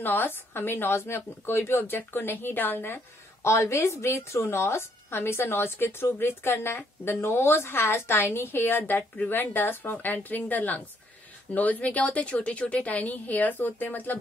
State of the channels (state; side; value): normal; both; correlation 0.69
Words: nose. हमें नोज में कोई भी ऑब्जेक्ट को नहीं डालना है. Always breathe through nose. हमेशा नोज के थ्रू ब्रीथ करना है. The nose has tiny hair that prevent dust from entering the lungs. Nose में क्या होते हैं, छोटे छोटे टाइनी हेयर्स होते हैं, मतलब